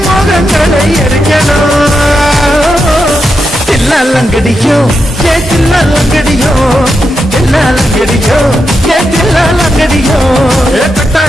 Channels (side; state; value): both; normal; correlation 0.85